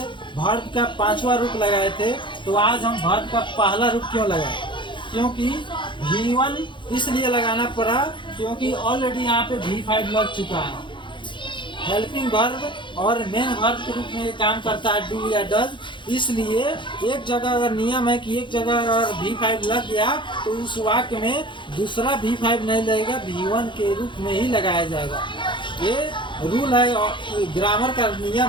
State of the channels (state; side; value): late; right; 0.23 ms